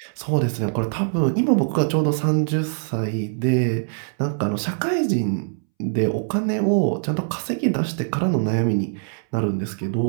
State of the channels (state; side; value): silent; left; 64 dB below the other